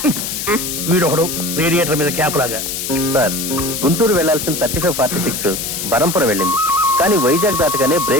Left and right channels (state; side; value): noise; left; hiss, 4 dB below the sound